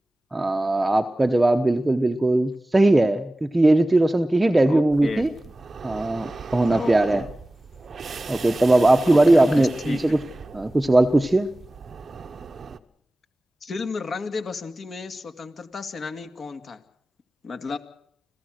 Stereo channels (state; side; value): normal; both; correlation 0.97